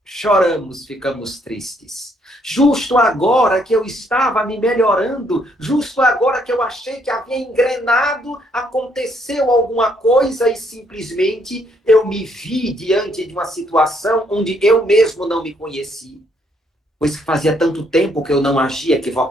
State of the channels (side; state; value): both; normal; correlation 0.70